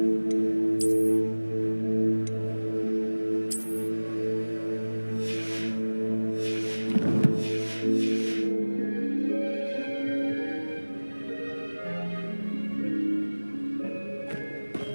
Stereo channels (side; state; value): both; inverted; correlation -1.00